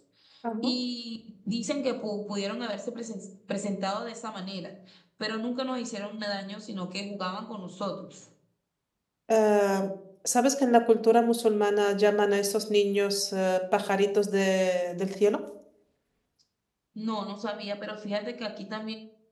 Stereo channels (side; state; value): both; identical; correlation 1.00